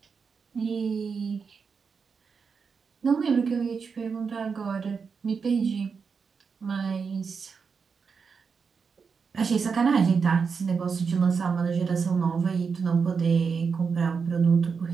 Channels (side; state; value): left; quieter; 5.6 dB